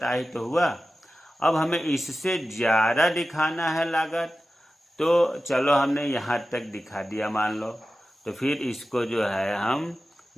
आय तो हुआ। अब हमें इससे ज़्यादा दिखाना है लागत, तो चलो हमने यहाँ तक दिखा दिया मान लो, तो फिर इसको जो है हम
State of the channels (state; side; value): normal; both; correlation 0.94